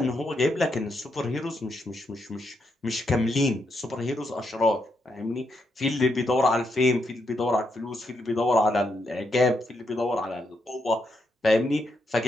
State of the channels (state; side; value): normal; both; correlation 0.80